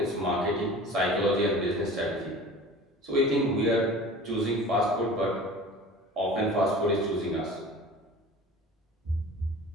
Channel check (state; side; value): normal; both; correlation 0.41